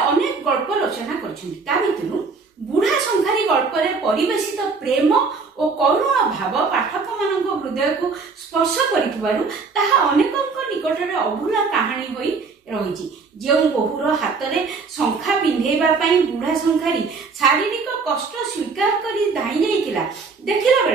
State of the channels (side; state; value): left; quieter; 4.7 dB